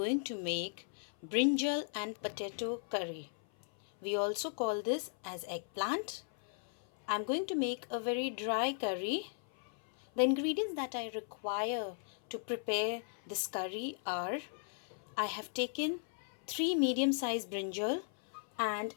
to make brinjal and potato curry. We also call this as eggplant. I am going to make a very dry curry. The ingredients that I require to prepare this curry are I have taken 3 medium-sized brinjal and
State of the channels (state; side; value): silent; right; 53 dB below the other